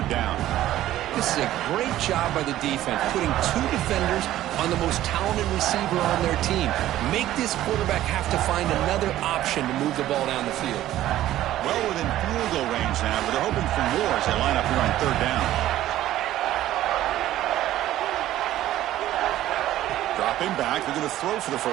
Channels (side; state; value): left; quieter; 13.8 dB